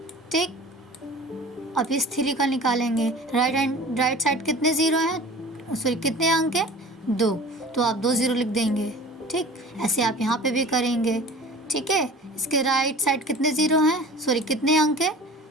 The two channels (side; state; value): both; normal; correlation 0.41